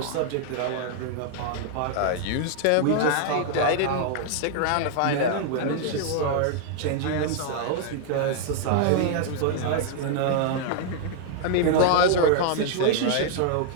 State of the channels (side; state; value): both; different; correlation 0.00